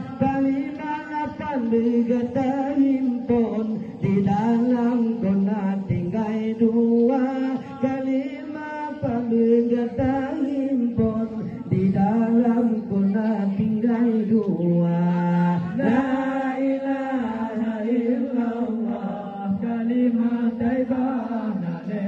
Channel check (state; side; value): identical; both; correlation 1.00